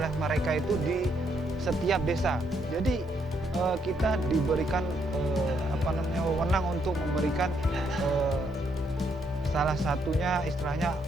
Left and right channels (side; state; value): both; normal; correlation 0.74